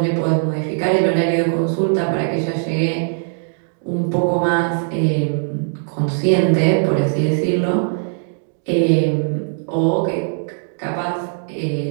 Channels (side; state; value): left; silent; digital silence